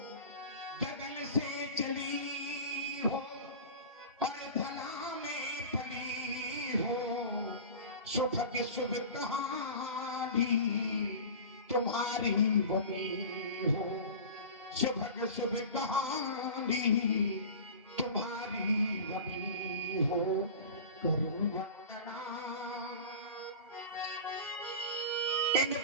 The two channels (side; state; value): both; inverted; correlation -0.34